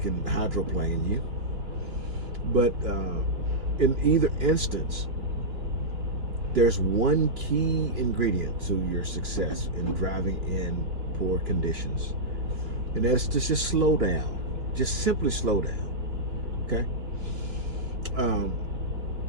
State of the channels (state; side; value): late; left; 3.1 ms